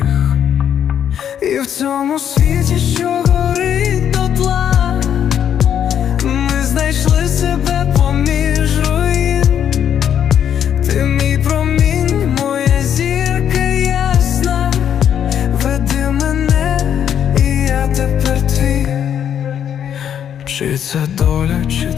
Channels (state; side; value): quieter; right; 9.1 dB